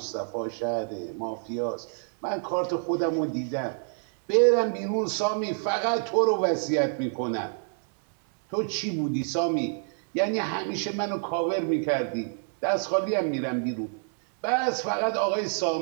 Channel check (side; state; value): left; silent; 59 dB below the other